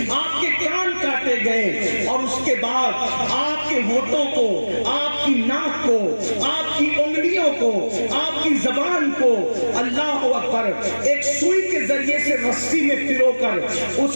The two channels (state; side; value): inverted; both; correlation -1.00